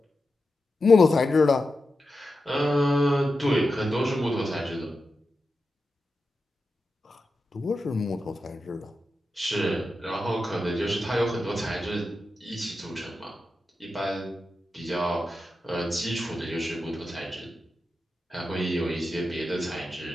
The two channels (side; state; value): both; normal; correlation 0.90